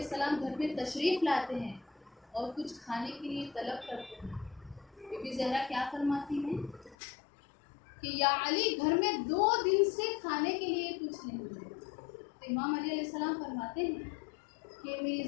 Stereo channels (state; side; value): drops out; right; at 7.0 s